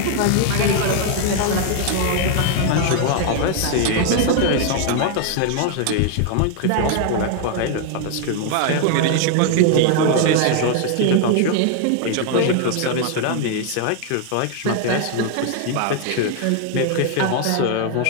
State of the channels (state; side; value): different; both; correlation 0.00